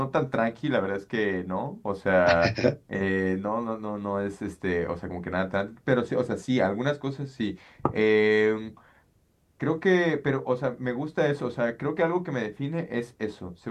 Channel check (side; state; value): both; identical; correlation 1.00